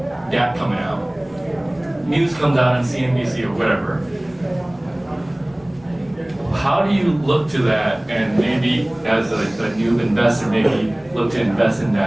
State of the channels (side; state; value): left; noise; rumble, 28 dB below the sound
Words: DApp coming out, news comes out on CNBC or whatever, how do you look to that and maybe as a new investor, maybe look to invest in